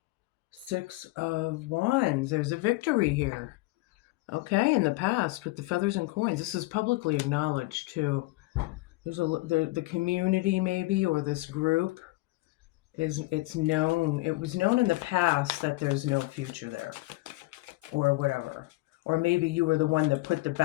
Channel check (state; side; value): quieter; right; 21.5 dB